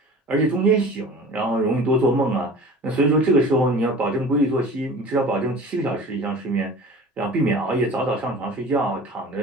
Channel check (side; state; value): both; normal; correlation 0.40